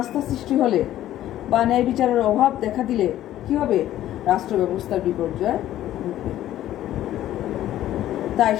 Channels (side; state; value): right; quieter; 13.1 dB